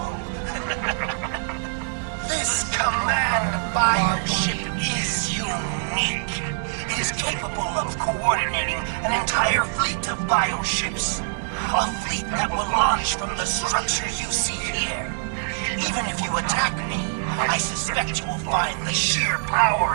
This command bioship is unique. It is capable of coordinating an entire fleet of bioships. A fleet that will launch from the structures you see here. Even if you attack me, I suspect you will find the sheer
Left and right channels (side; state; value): left; silent; digital silence